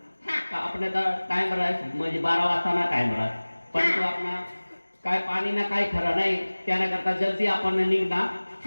हा का आपल्या टाइम राहत म्हणजे 12 वाजता ना टाइम राहत पण तो आपला काय पाणी ना काही खरं नाही त्याना करता जल्दी आपण निघणार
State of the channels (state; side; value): inverted; both; correlation -1.00